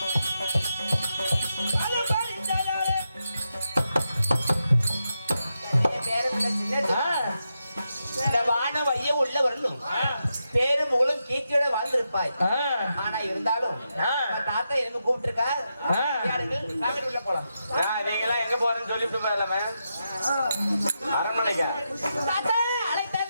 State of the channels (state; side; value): inverted; both; correlation -0.86